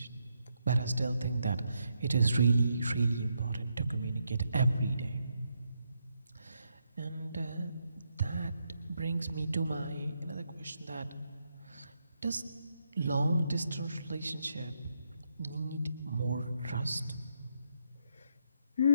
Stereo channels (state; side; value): inverted; both; correlation -0.79